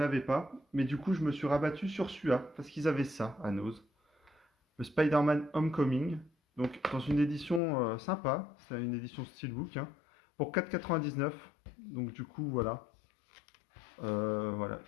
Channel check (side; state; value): right; drops out; at 7.6 s